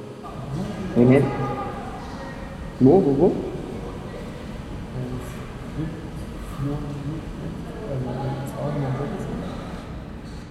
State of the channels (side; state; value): both; identical; correlation 1.00